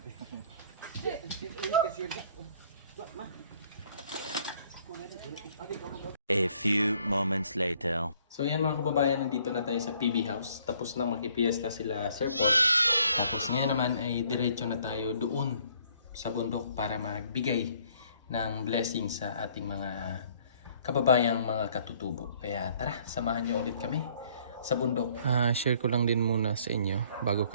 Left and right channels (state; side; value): inverted; both; correlation -0.62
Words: A few moments later. So yan mga kababayan, nandito na tayo sa PB House. Tapos na makipiesta sila Sir Paul. Tapos ngayon naman ay diretso na tayo doon sa bundok para magbigay ng blessing sa ating mga kababayang mga katutubo. Kaya tara, samahan nyo ulit kami sa bundok. Share ko lang din muna sa inyo bago